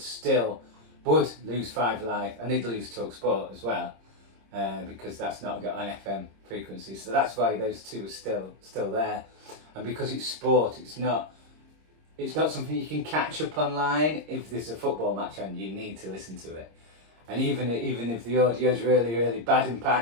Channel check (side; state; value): left; late; 26 ms